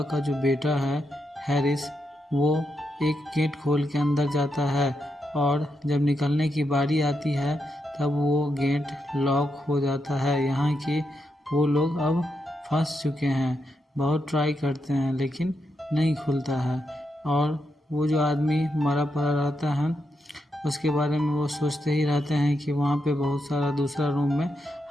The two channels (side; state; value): both; normal; correlation 0.83